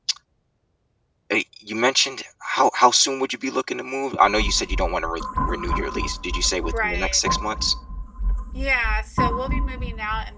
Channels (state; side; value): identical; both; correlation 1.00